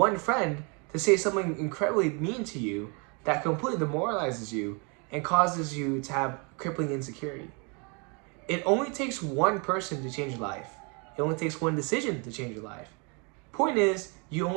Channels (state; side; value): quieter; left; 33.1 dB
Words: friend to say something incredibly mean to you that completely demoralizes you and causes you to have crippling insecurity. It only takes one person to change your life. It only takes one decision to change your life. Point is, you